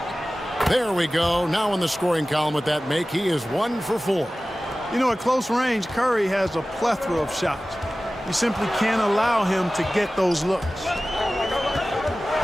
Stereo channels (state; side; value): normal; both; correlation 0.96